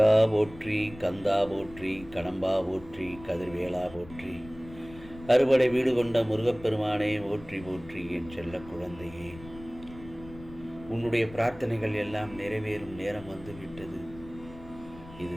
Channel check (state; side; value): noise; left; rumble, 18 dB below the sound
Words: போற்றி, கந்தா போற்றி, கடம்பா போற்றி, கதிர்வேலா போற்றி. அறுபடை வீடு கொண்ட முருகப்பெருமானே போற்றி போற்றி. என் செல்ல குழந்தையே, உன்னுடைய பிரார்த்தனைகள் எல்லாம் நிறைவேறும் நேரம் வந்துவிட்டது. இது